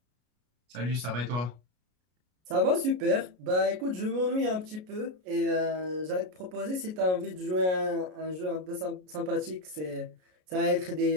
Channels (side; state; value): left; late; 33 ms